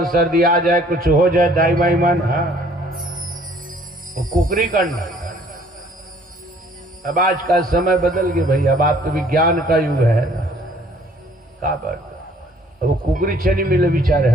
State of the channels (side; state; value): both; normal; correlation 0.58